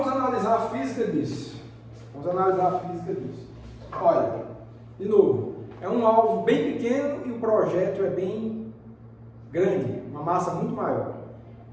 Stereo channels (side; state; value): both; identical; correlation 1.00